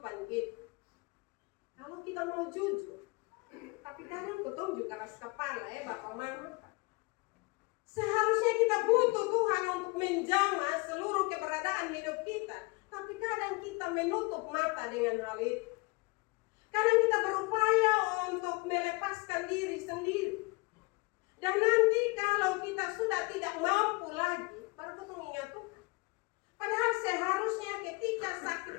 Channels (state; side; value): quieter; right; 26.7 dB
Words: kita. Kalau kita mau jujur, tapi kadang ketemu juga keras kepala Bapak Mama. Seharusnya kita butuh Tuhan untuk menjamah seluruh keberadaan hidup kita, tapi kadang kita menutup mata dengan hal itu. Kadang kita berupaya untuk melepaskan diri sendiri. Dan nanti kalau kita sudah tidak mampu lagi, baru kita ingat Tuhan. Padahal seharusnya ketika